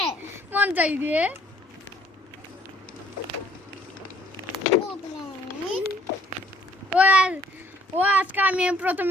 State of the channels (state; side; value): normal; both; correlation 0.62